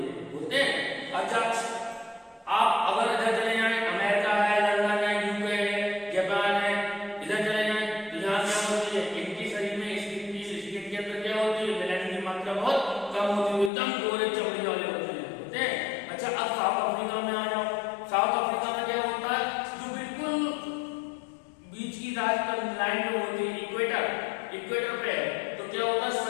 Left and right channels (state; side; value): drops out; right; at 13.7 s